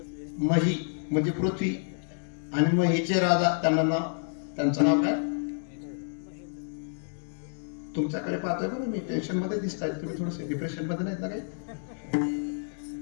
मही म्हणजे पृथ्वी आणि महीचे राजा, त्यांचं नाव काय? तुमच्याकडे पाहतोय बरं मी, टेन्शन मध्ये दिसताय तुम्ही, थोडस डिप्रेशन मध्ये नाहीत ना काही?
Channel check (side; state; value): right; silent; digital silence